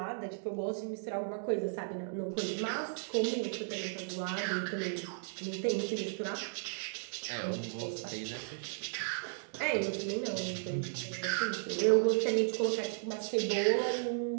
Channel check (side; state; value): left; silent; digital silence